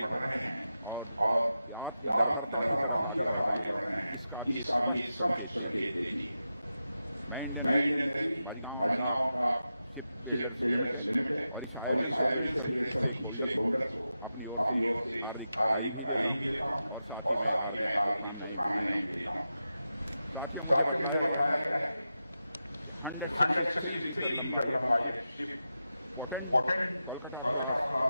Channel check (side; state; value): both; inverted; correlation -0.90